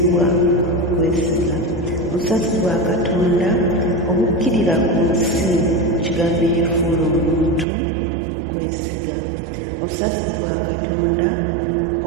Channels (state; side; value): drops out; left; at 7.7 s